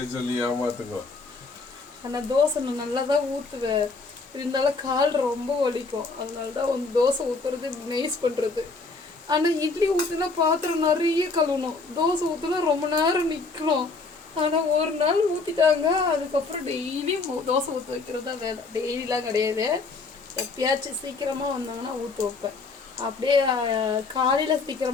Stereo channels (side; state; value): right; quieter; 3.9 dB